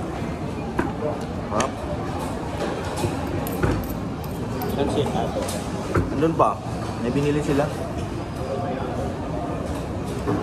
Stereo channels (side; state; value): both; identical; correlation 1.00